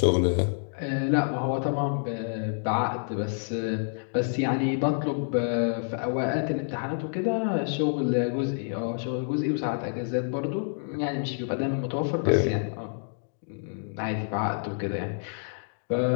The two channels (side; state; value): right; silent; digital silence